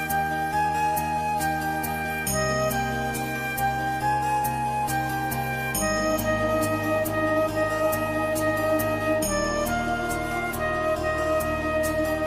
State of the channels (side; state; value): both; identical; correlation 1.00